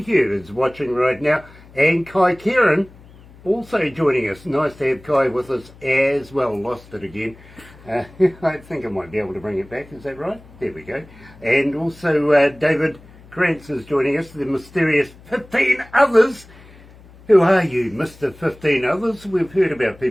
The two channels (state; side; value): noise; left; hum, 23 dB below the sound